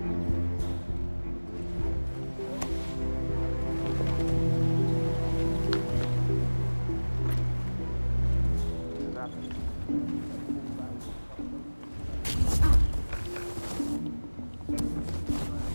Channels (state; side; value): inverted; both; correlation -1.00